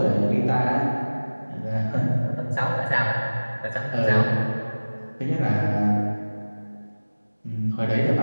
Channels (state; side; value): inverted; both; correlation -1.00